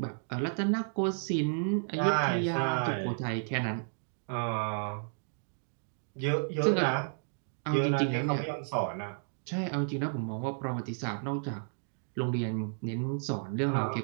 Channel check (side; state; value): left; silent; digital silence